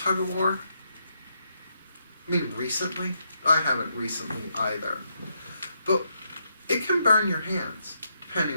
of war? I mean, recently? I haven't recently either. But it can burn your hands, depending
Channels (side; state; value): both; inverted; correlation -0.79